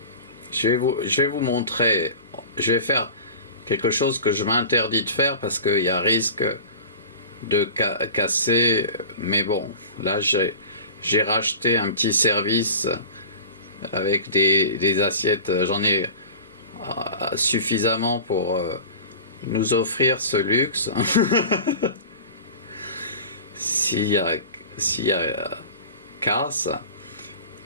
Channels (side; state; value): both; inverted; correlation -0.37